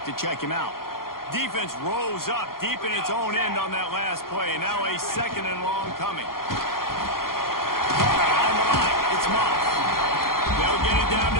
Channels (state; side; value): late; right; 0.92 ms